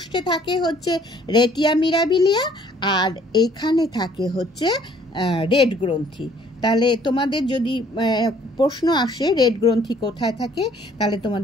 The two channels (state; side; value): normal; both; correlation 0.59